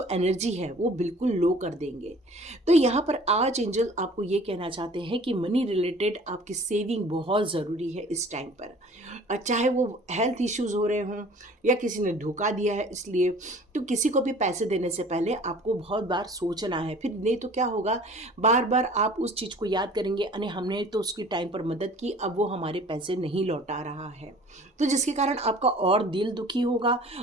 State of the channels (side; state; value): both; normal; correlation 0.48